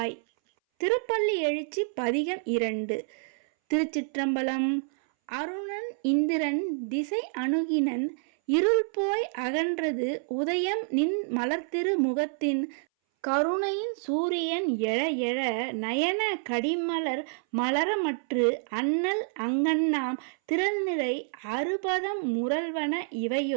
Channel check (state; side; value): silent; left; 59 dB below the other